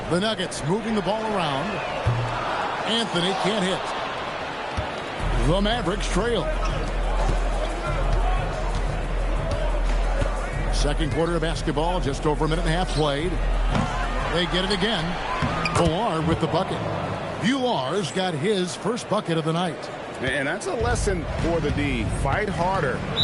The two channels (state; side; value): identical; both; correlation 1.00